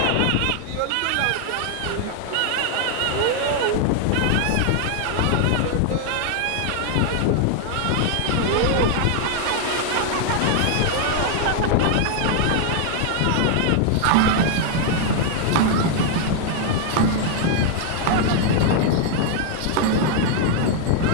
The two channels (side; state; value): both; different; correlation 0.00